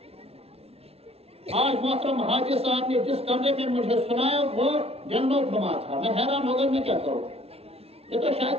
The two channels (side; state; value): left; late; 0.29 ms